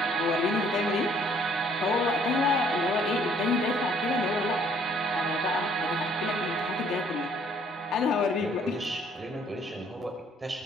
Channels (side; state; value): both; normal; correlation 0.61